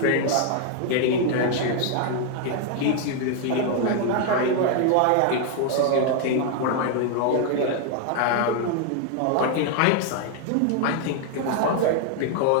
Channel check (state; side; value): different; both; correlation 0.00